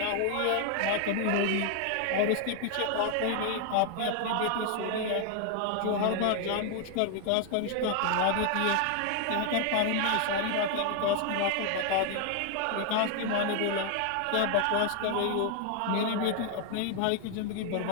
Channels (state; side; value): different; both; correlation 0.00